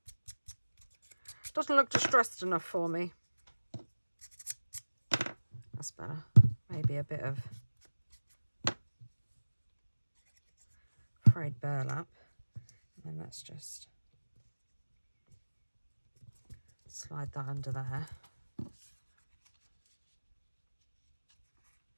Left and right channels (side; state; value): both; inverted; correlation -1.00